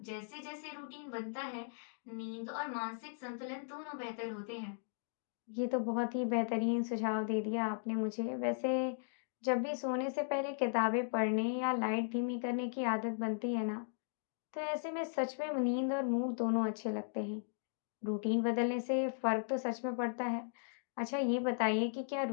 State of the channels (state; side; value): silent; right; digital silence